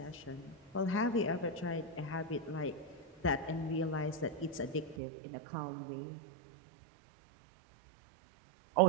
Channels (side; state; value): left; drops out; at 5.0 s